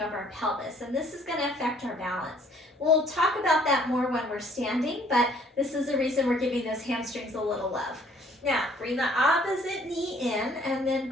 of our pelvis, and this is going to affect our balance. We'll talk about that more when we're standing, but this is the reason we're giving those hamstrings a little love. Now, bring the opposite knee in, and then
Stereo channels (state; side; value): normal; both; correlation 0.59